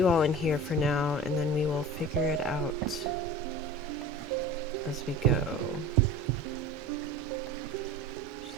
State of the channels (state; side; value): normal; both; correlation 0.36